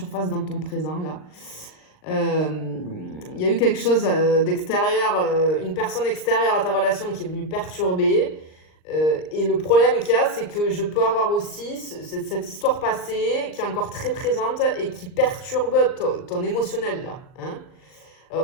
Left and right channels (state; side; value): late; right; 39 ms